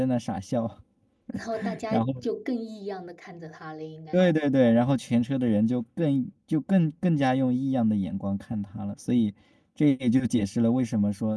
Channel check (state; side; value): identical; both; correlation 1.00